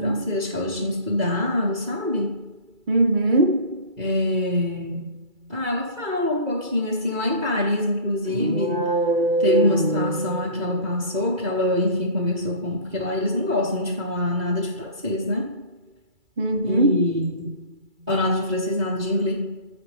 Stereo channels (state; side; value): late; left; 2.3 ms